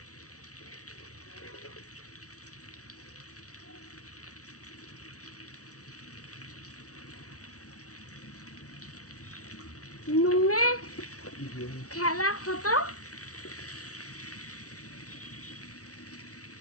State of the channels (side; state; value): right; late; 0.66 ms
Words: নুনে খেলা খতম।